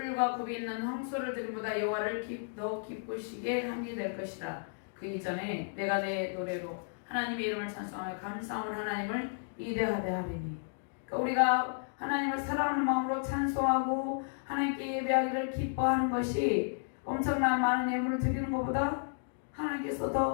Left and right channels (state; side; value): silent; right; digital silence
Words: 굽이 있는 황소를 드림보다 여호와를 더 기쁘시게 함이 될 것이다. 그 이전에 내가 내 노래로 하나님의 이름을 찬송하며 감사함을 하나님을 이대하되 하리니. 그러니까 우리가 하나님을 사랑하는 마음으로 찬송하고 하나님께 예배하기를 기뻐하는 것이 엄청난 많은 예물을 드리는 것보다 하나님께서